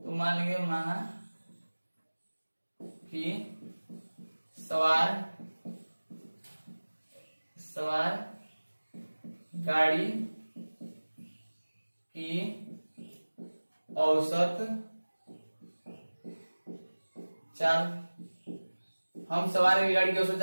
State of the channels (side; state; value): both; inverted; correlation -1.00